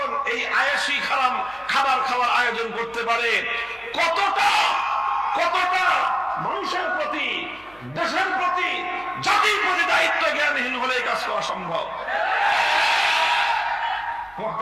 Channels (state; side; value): noise; right; hum, 28 dB below the sound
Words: এই আয়েশি খাবার খাওয়ার আয়োজন করতে পারে। কতটা কতটা মানুষের প্রতি, দেশের প্রতি, জাতির প্রতি দায়িত্ব জ্ঞানহীন হলে কাজ করা সম্ভব।